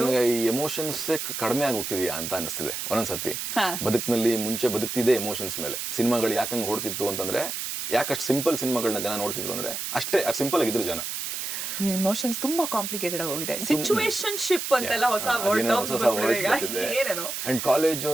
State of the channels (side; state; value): right; noise; hiss, 4 dB below the sound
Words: ಈ ಎಮೋಷನ್ಸ್ ಕಡಿಮೆ ಆಗಿ ಹೋಗ್ತಿದ್ಯಾ ಅಂತ ಅನಿಸ್ತಿದೆ ಒಂದೊಂದ್ಸತಿ. ಬದುಕಿನಲ್ಲಿ ಮುಂಚೆ ಬದುಕ್ತಿದೆ ಎಮೋಷನ್ಸ್ ಮೇಲೆ. ಸಿನಿಮಾಗಳು ಯಾಕಂಗ್ ಓಡ್ತಿತ್ತು ಅಂತಂದ್ರೆ, ಯಾಕಷ್ಟು ಸಿಂಪಲ್ ಸಿನಿಮಾಗಳನ್ನ ಜನ ನೋಡ್ತಿದ್ರು ಅಂದ್ರೆ ಅಷ್ಟೇ ಸಿಂಪಲ್ ಆಗಿದ್ರು ಜನ. ಇಮೋಷನ್ಸ್ ತುಂಬಾ ಕಾಂಪ್ಲಿಕೇಟೆಡ್ ಆಗೋಗಿದೆ. ಸಿಚುವೇಶನ್ಶಿಪ್ ಅಂತೆಲ್ಲ ಹೊಸ ವರ್ಡ್ ಬಂದಿದೆ. ಅಂಡ್ ಕಾಲೇಜ್